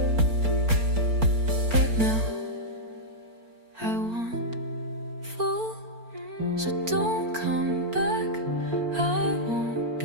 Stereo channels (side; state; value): left; late; 4.4 ms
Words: but now I want full. So don't come back, I won't